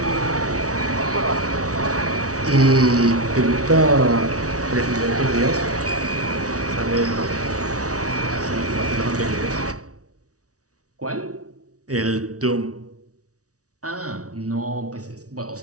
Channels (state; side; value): late; left; 0.67 ms